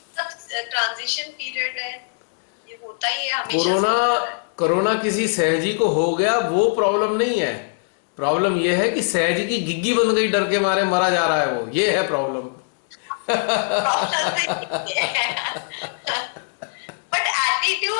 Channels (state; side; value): silent; right; 58 dB below the other